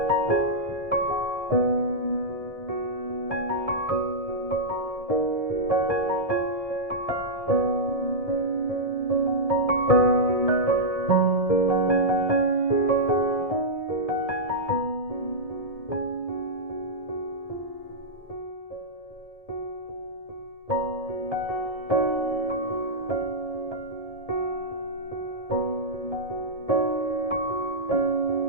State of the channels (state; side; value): late; right; 1.7 ms